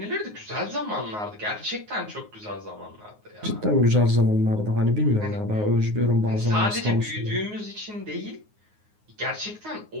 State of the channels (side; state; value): left; late; 9.5 ms